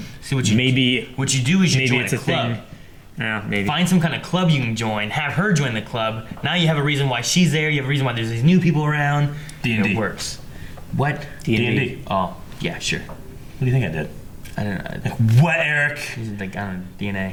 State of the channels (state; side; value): identical; both; correlation 1.00